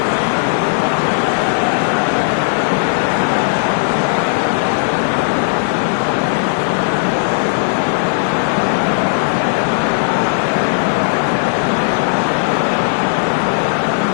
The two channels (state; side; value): silent; right; 69 dB below the other